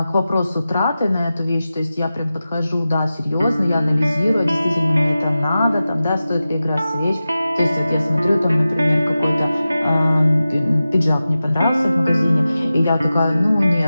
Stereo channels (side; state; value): both; inverted; correlation -0.94